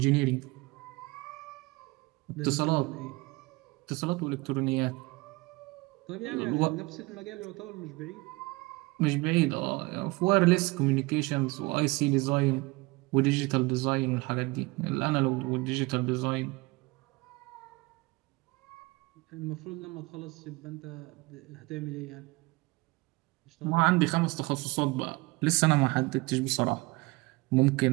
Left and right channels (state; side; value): quieter; left; 23.8 dB